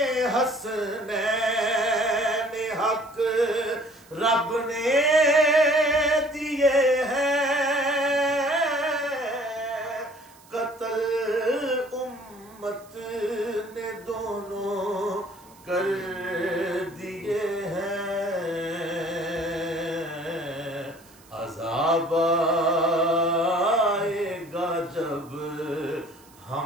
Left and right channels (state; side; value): noise; right; hiss, 26 dB below the sound